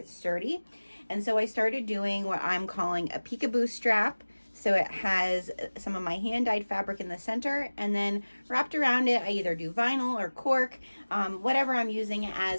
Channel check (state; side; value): inverted; both; correlation -1.00